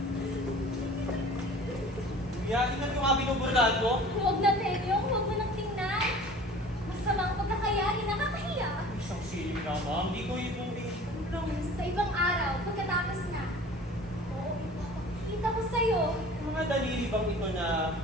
Kuya, tingnan ko nga binuburdahan ko. Huwag na, Tenyo. Huwag mo nang tingnan. Masamang pagkakayari, nakakahiya. Isang silip na, ma'am. Di ko yung Sa ibang araw, pagkatapos na. Oo, ipapakita ko sa'yo. mga daliri bang ito na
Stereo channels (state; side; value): normal; both; correlation 0.44